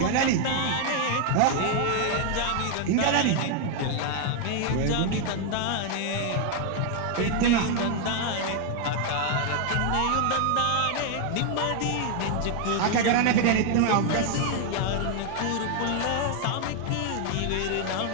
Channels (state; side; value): different; both; correlation 0.00